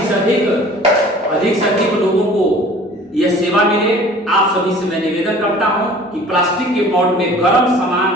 लोगों को यह सेवा मिले। आप सभी से मैं निवेदन करता हूं कि प्लास्टिक के पॉट में गर्म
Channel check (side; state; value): both; normal; correlation 0.47